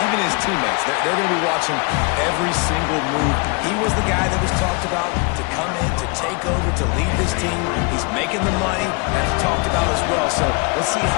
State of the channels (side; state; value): right; quieter; 29.7 dB